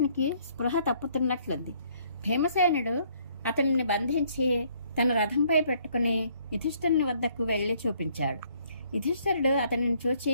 స్పృహ తప్పుతున్నట్లుంది. భీమసేనుడు అతనిని బంధించి తన రథంపై పెట్టుకుని యుధిష్ఠిరుని వద్దకు వెళ్లి చూపించాడు. యుధిష్ఠిరుడు అతనిని చూచి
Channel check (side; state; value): both; inverted; correlation -0.64